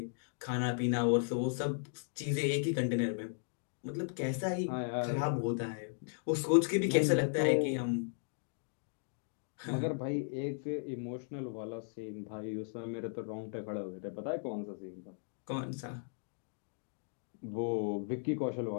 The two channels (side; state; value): right; silent; digital silence